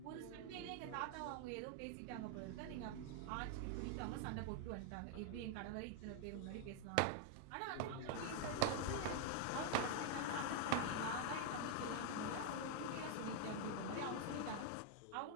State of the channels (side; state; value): both; different; correlation 0.00